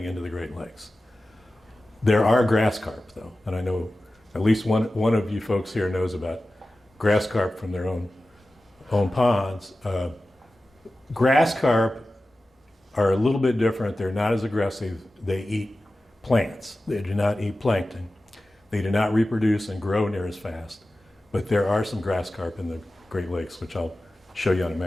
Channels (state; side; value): normal; both; correlation 0.95